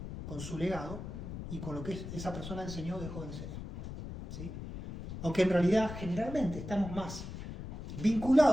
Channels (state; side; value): noise; left; rumble, 9 dB below the sound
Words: con su legado y con lo que esa persona enseñó o dejó de enseñar. ¿Sí? Aunque en realidad generalmente estamos más